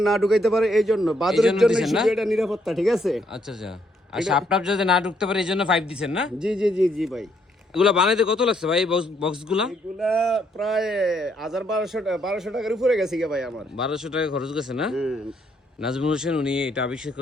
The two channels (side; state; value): both; normal; correlation 0.72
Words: না ঢুকাইতে পারে, এই জন্য বাদুরের জন্য শুধু এটা নিরাপত্তা, ঠিক আছে? আচ্ছা আচ্ছা। আর সাপটাপ যাতে না ঢুকতে পারে এই জন্য 5 দিবেন না? জি জি জি জি ভাই। এগুলা বানাইতে কত লাগছে ভাই বক্সগুলা? এগুলা প্রায় 1200 টাকার উপরে গেছে কি ভাই আমার। 1200 টাকা খরচ গেছে না? হুম। নাজমুল হোসেন উনি এটা আবিষ্কার